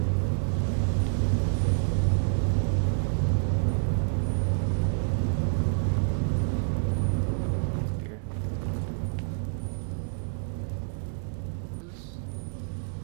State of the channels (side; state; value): left; silent; digital silence